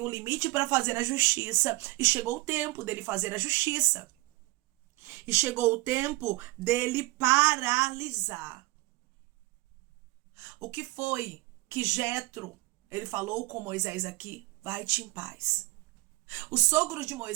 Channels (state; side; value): quieter; left; 22.1 dB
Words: um limite para fazer a justiça. E chegou o tempo dele fazer a justiça. E chegou o tempo dele paralisar. O que foi que Jetro, ele falou com Moisés aqui? Vai-te em paz. O sogro de